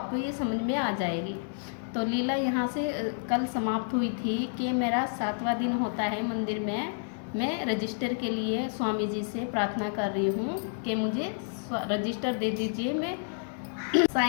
ये समझ में आ जाएगी। तो लीला यहाँ से कल समाप्त हुई थी कि मेरा 7वां दिन होता है मंदिर में। मैं रजिस्टर के लिए स्वामी जी से प्रार्थना कर रही हूँ कि मुझे रजिस्टर दे दीजिए, मैं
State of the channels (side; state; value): right; silent; 58 dB below the other